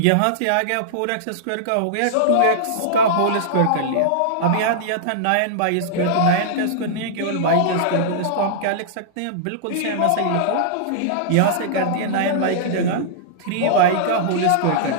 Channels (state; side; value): different; both; correlation -0.02